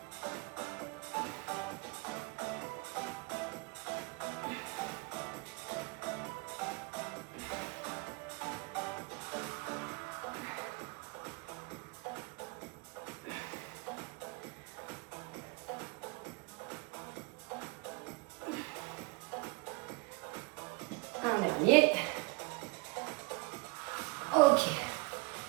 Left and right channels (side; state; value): left; quieter; 26.0 dB